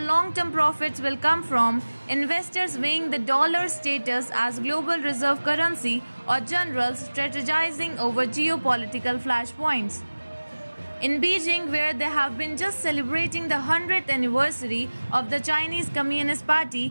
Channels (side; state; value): both; inverted; correlation -1.00